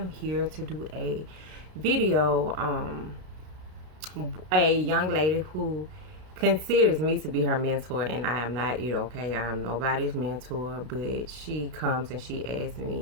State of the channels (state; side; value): late; left; 33 ms